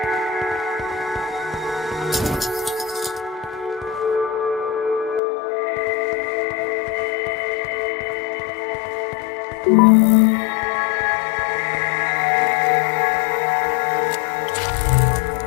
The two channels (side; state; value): right; drops out; at 5.2 s